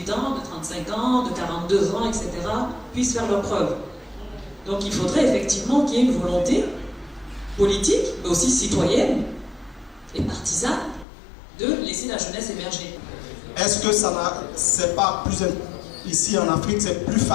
ans, de 35 ans, de 42 ans, etc. puissent faire leurs preuves. Donc il faudrait effectivement qu'il y ait une volonté politique, mais aussi citoyenne et partisane, de laisser la jeunesse émerger. Est-ce que c'est pas plus... Ici en Afrique, c'est plus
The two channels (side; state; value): right; drops out; at 11.1 s